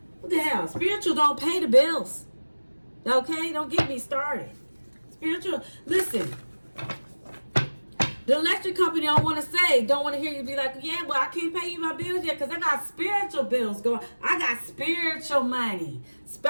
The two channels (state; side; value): inverted; both; correlation -1.00